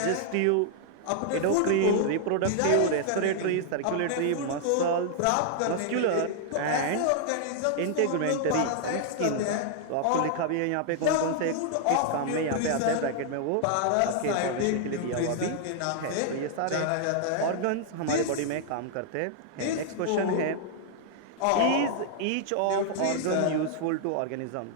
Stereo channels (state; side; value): different; both; correlation -0.01